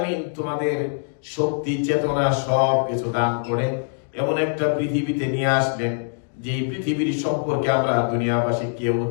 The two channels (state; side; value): silent; right; digital silence